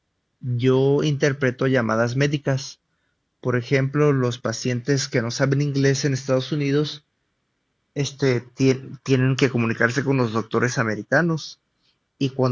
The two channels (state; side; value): identical; both; correlation 1.00